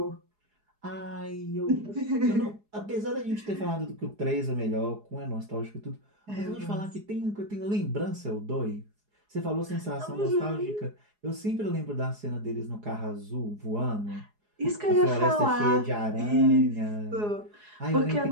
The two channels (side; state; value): left; late; 4.8 ms